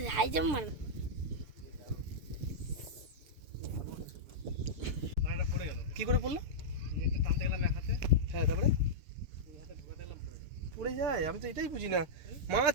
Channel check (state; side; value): late; left; 6.9 ms